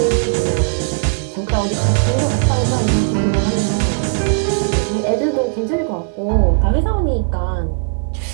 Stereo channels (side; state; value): left; silent; digital silence